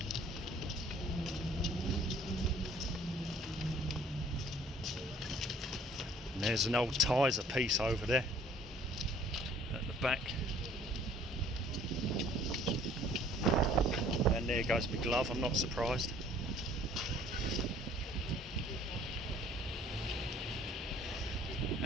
There's an old Tizer piece over there at the back, and there goes my glove. I'm not surprised.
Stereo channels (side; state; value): both; normal; correlation 0.56